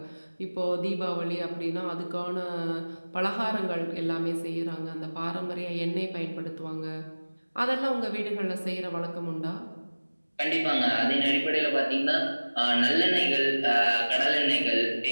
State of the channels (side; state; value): both; inverted; correlation -1.00